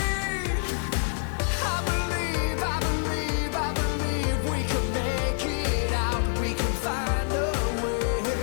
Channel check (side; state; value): right; silent; 60 dB below the other